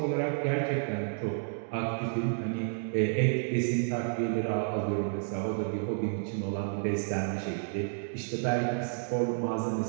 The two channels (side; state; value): left; silent; digital silence